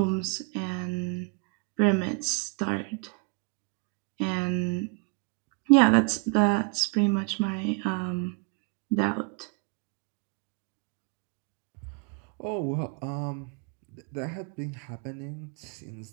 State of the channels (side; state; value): left; quieter; 35.5 dB